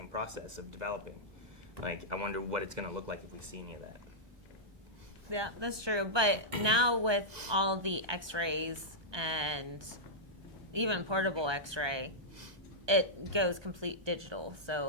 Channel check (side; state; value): left; late; 1.2 ms